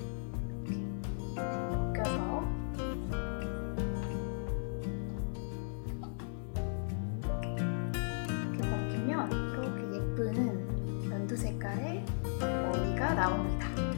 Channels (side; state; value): right; silent; digital silence